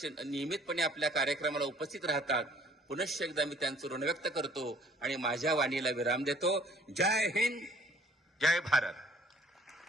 आपल्या कार्यक्रमाला उपस्थित राहतात. पुनश्च एकदा मी त्यांचं ऋण व्यक्त करतो आणि माझ्या वाणीला विराम देतो. जय हिंद, जय भारत.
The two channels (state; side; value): normal; both; correlation 0.56